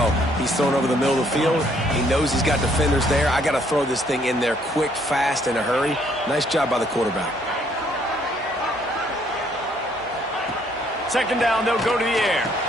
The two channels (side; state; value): both; normal; correlation 0.66